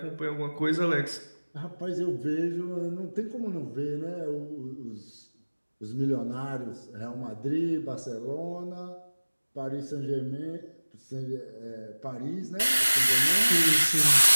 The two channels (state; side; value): inverted; both; correlation -1.00